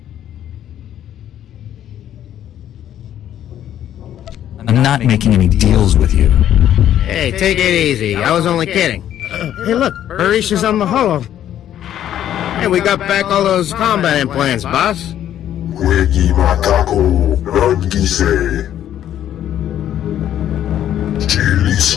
I'm not making any deals with you. Hey, take it easy. I was only kidding. Hey, look, Barish is on the holo. Hey, we got back all those combat implants, boss. Wegi Matako, Rangise.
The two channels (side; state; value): right; quieter; 11.1 dB